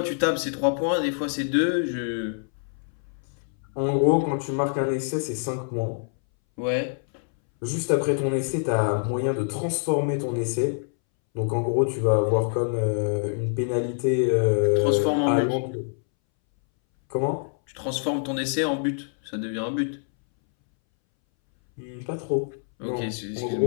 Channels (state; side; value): silent; right; 61 dB below the other